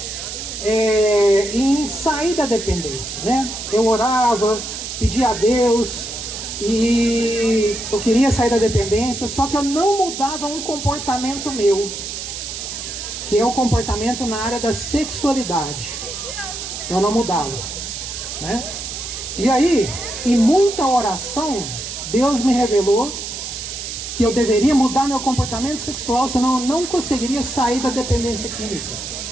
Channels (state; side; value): noise; right; hiss, 7 dB below the sound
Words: em sair da dependência, né? Eu orava, pedia a Deus e eu queria sair da dependência, só que eu não mudava um comportamento meu, que é o comportamento na área da sexualidade. Eu não mudava, né? E aí, em muita oração, Deus me revelou que eu deveria mudar meu comportamento sexual, senão eu não conseguiria sair da dependência química.